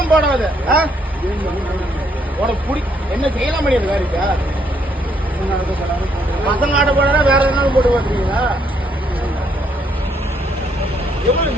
படம். அது உனக்கு என்ன செய்யலாம் முடியாது காரிக்கா பசங்க ஆட்ட போடா வேற எதுனாலும் போட்டு பாத்துருக்கீங்களா? எவ்வளவு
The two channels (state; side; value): normal; both; correlation 0.71